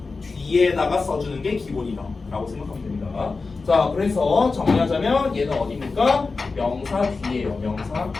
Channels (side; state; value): right; quieter; 4.1 dB